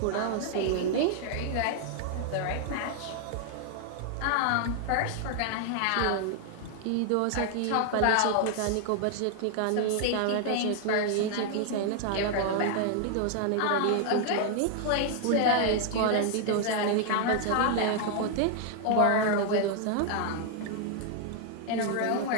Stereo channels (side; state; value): both; different; correlation 0.00